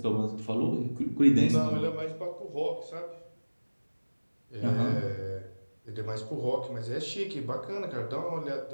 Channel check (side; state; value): both; inverted; correlation -1.00